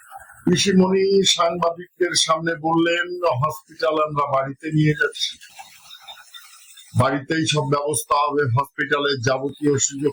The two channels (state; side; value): identical; both; correlation 1.00